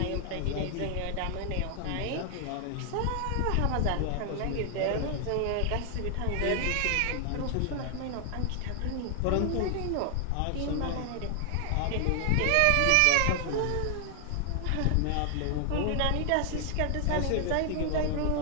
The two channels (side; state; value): both; different; correlation 0.00